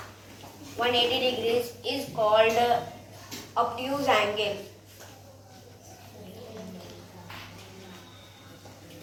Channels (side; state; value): both; identical; correlation 1.00